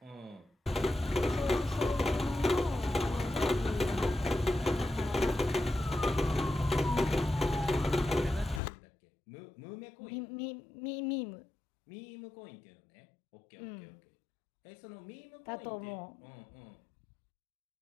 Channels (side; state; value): right; drops out; at 8.6 s